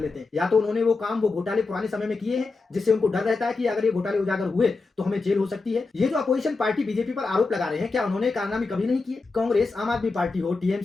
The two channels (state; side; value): quieter; right; 3.9 dB